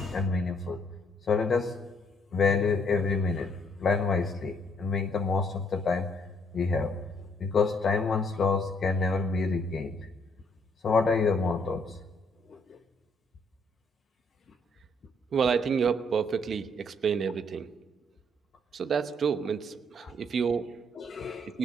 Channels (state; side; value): normal; both; correlation 0.68